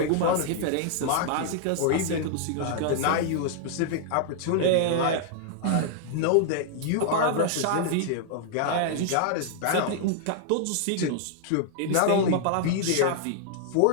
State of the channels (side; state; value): both; different; correlation -0.01